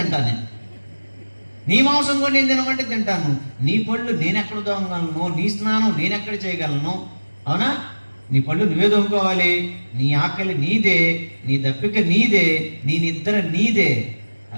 నీ మాంసం కూడా నేను తినమంటే తింటాను. నీ పళ్ళు నేను ఎక్కడ దోమగలను? నీ స్నానం నేను ఎక్కడ చేయగలను? అవునా? నీ పళ్ళు నువ్వే దోముకోవాలి. నీ ఆకలి నీదే, నీ దప్పిక నీదే, నీ నిద్ర నీదే.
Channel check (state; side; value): inverted; both; correlation -1.00